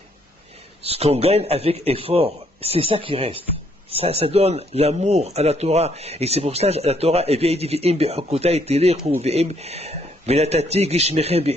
ce qu'on gagne avec effort, c'est ça qui reste. Ça donne l'amour à la Torah. Et c'est pour ça que la Torah, elle vient dire,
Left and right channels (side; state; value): both; normal; correlation 0.69